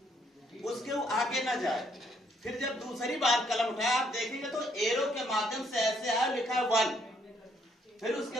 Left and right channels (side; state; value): both; normal; correlation 0.69